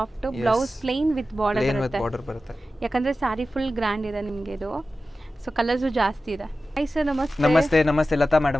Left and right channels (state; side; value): normal; both; correlation 0.94